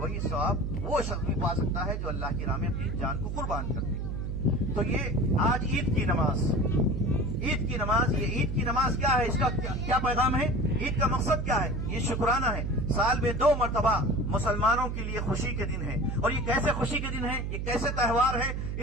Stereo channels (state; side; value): noise; right; hum, 3 dB below the sound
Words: ثواب وہ شخص بھی پا سکتا ہے جو اللہ کی راہ میں اپنی جان کو قربان کر دے۔ تو یہ آج عید کی نماز، عید کی نماز، یہ عید کی نماز کیا ہے، اس کا کیا پیغام ہے، عید کا مقصد کیا ہے؟ یہ شکرانہ ہے، سال میں 2 مرتبہ مسلمانوں کے لیے خوشی کے دن ہے۔ اور یہ کیسے خوشی کے دن ہے، یہ کیسے تہوار ہے؟